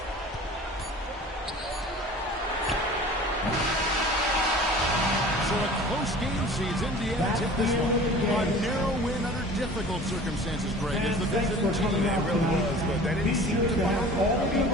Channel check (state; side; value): normal; both; correlation 0.43